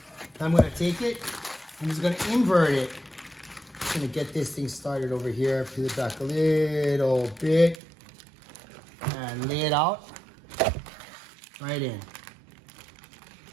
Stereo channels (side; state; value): left; drops out; at 7.8 s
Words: I'm gonna take it. I'm just gonna invert it Just gonna get this thing started over here. Peel it back a little bit and lay it out right in.